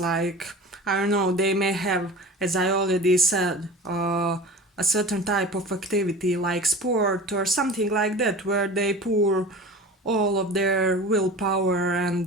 like, I don't know, they may have, as I already said, a certain type of activity like sport or something like that, where they pour all of their willpower,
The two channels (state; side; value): normal; both; correlation 0.36